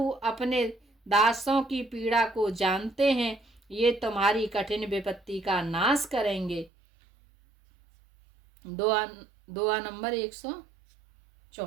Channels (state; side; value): drops out; left; at 6.7 s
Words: अपने दासों की पीड़ा को जानते हैं, ये तुम्हारी कठिन विपत्ति का नाश करेंगे। दुआ नंबर